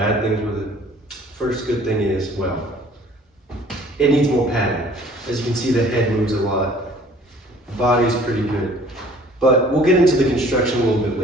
things with it. First good thing is, well, it needs more padding. As you can see, the head moves a lot. The body's pretty good. But we'll get into the construction a little bit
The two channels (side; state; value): both; normal; correlation 0.53